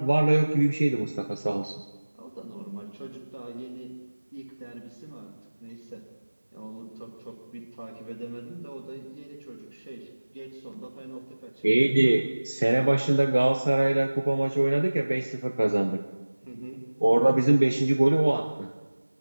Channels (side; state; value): both; inverted; correlation -1.00